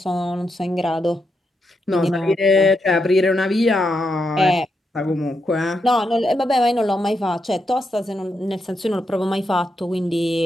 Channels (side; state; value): both; normal; correlation 0.83